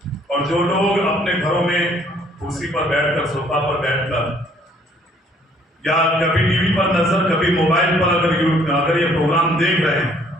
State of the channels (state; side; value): normal; both; correlation 0.61